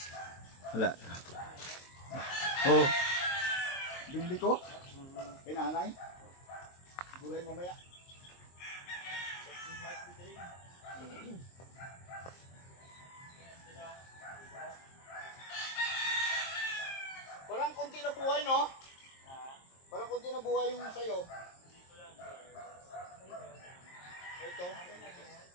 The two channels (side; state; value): right; late; 23 ms